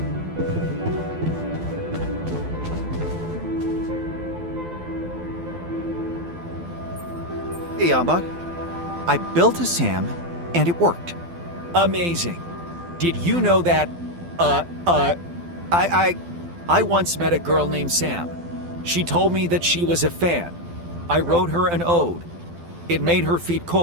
Hey, Yambot. I built a SAM, and it worked. Amazing. Did you know that, I once met a girl named Sam. She told me that she was a fan. I wrote her an ode. It made her feet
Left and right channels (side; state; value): left; late; 12 ms